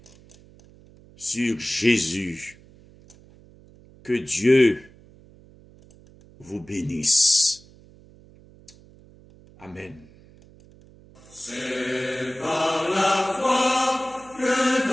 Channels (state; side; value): noise; right; hum, 25 dB below the sound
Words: sur Jésus. Que Dieu vous bénisse. Amen. C'est par la foi que